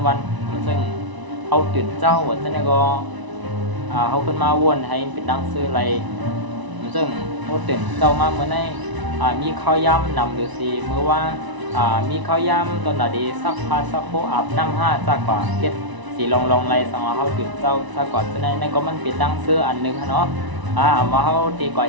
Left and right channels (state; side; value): late; left; 1.0 ms